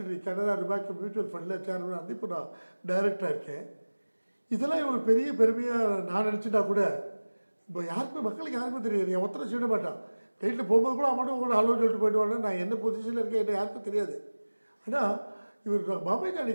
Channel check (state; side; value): inverted; both; correlation -1.00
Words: கனரா பேங்க் மியூச்சுவல் ஃபண்டில் சேர்மன் வந்து இப்போ நான் டைரக்டராக இருக்கேன். இதெல்லாம் ஒரு பெரிய பெருமையாக நான் நினச்சிட்டா கூட இப்போ யாருக்குமே மக்களுக்கு யாருக்குமே தெரியாது. என் ஒருத்தரை சொல்ல மாட்டான், ரைட்டில் போகும்போது கூட அவன் உங்களோட ஹலோ சொல்லிட்டு போயிடுவாங்க. நான் என்ன பொசிஷனில் இருக்கேன் என்ன யாருக்கும் தெரியாது. ஆனால் இவர் பாம்பே